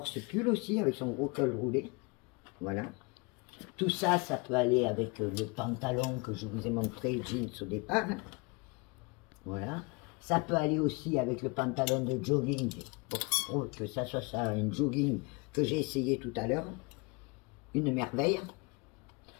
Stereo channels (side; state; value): right; quieter; 28.8 dB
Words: ce pull aussi, avec son gros col roulé. Voilà. Tout ça, ça peut aller avec le pantalon que je vous ai montré, jeans au départ. Voilà. Ça peut aller aussi avec le pantalon de jogging, pour que ça soit ça, un jogging que j'ai essayé tout à l'heure. Une merveille.